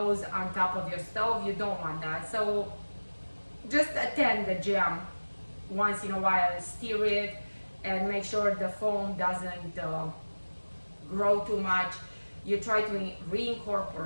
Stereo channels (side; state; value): both; inverted; correlation -1.00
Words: on top of your stove. You don't want that. So just attend the jam once in a while, stir it, and make sure the foam doesn't grow too much. You try to